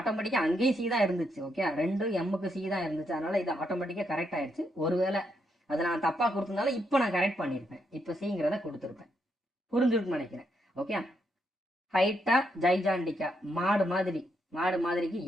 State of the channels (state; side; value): normal; both; correlation 0.78